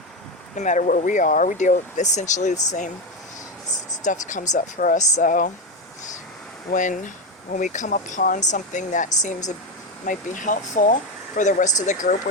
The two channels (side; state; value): both; normal; correlation 0.14